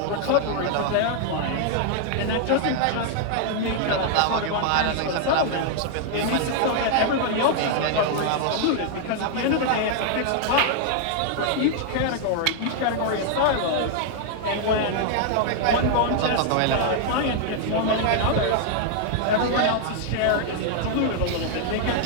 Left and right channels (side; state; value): both; different; correlation 0.00